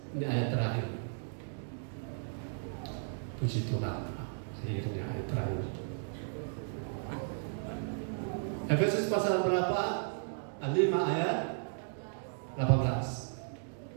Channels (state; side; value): silent; left; digital silence